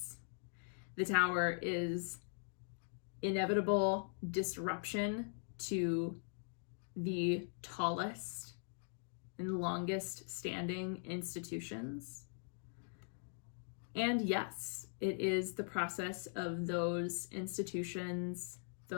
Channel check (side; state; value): right; silent; digital silence